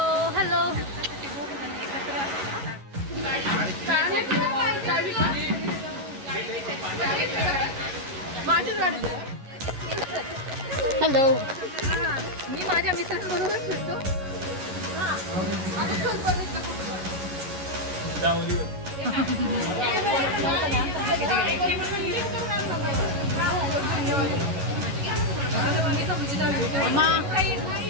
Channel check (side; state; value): left; late; 11 ms